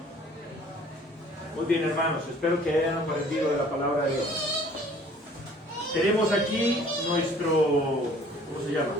Muy bien, hermanos, espero que hayan aprendido de la palabra de Dios. Tenemos aquí nuestro, ¿cómo se llama?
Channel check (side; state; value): both; normal; correlation 0.54